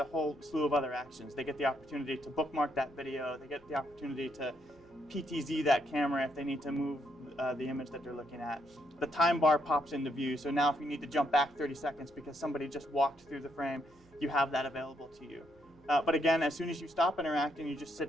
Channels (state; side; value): noise; right; hum, 30 dB below the sound